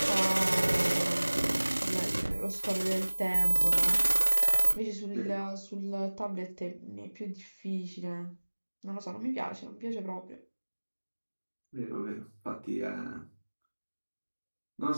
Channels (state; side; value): inverted; both; correlation -1.00